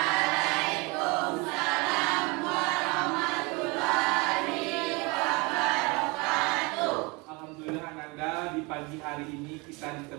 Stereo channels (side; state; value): left; quieter; 27.3 dB